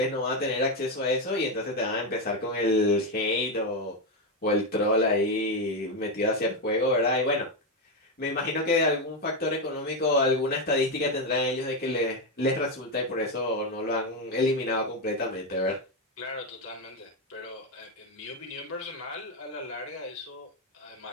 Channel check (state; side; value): normal; both; correlation 0.08